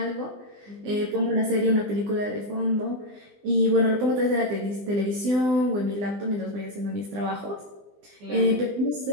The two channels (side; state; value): left; late; 20 ms